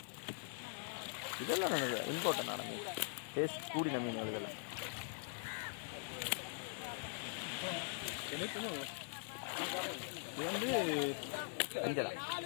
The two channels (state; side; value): silent; right; digital silence